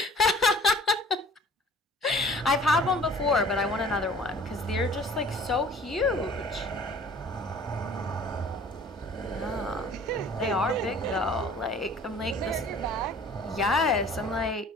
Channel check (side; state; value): both; normal; correlation 0.50